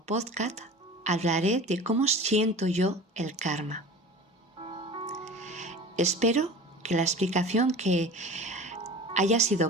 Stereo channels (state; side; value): normal; both; correlation 0.37